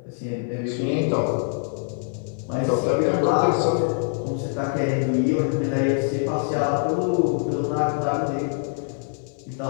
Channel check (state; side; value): silent; right; 58 dB below the other